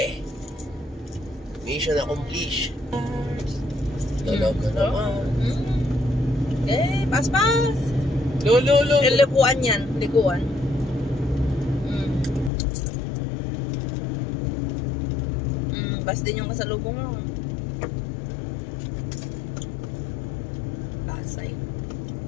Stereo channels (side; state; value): right; drops out; at 12.5 s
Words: Mission accomplished. Talaga naman. Okay, pas. Lolo. Likuan yan, likuan. Bas din yung kasalubong mo. Basay.